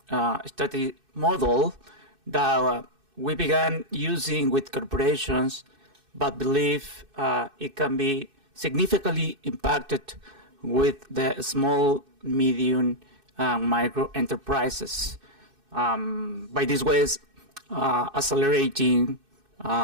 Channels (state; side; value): late; left; 2.6 ms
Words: strategy model that we began using with corporations, but believe it can be significantly impacted with the small, medium, micro enterprises. By these ways, accelerating